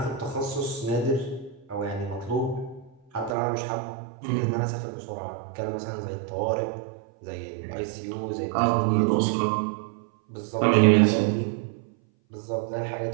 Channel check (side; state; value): left; drops out; at 3.4 s